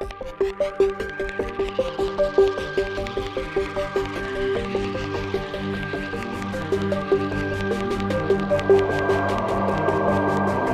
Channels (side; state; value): both; identical; correlation 1.00